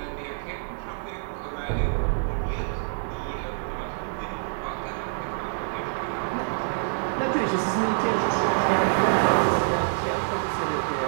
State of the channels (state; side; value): silent; left; digital silence